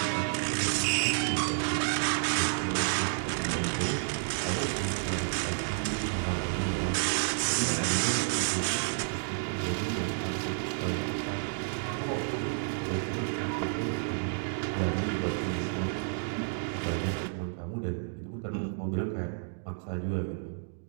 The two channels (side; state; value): left; silent; digital silence